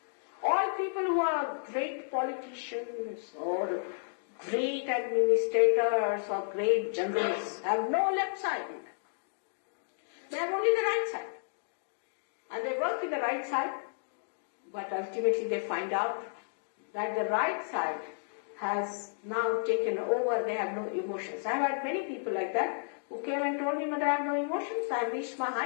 All people who are great politicians or great administrators or great generals have no left side in them. They have only the right side. And they work in the right side, but ultimately they find out that the right side has now taken over, they have no emotions. I have had many people like that who came and told me, Mother, I have no emotions, I have reached my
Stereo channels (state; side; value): silent; right; digital silence